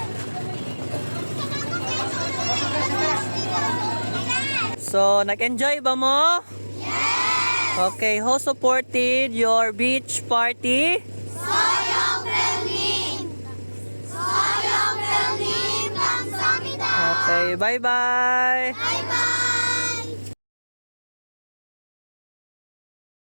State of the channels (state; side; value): inverted; both; correlation -1.00